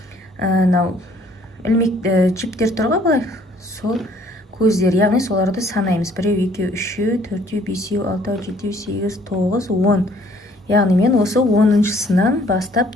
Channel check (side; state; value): both; normal; correlation 0.60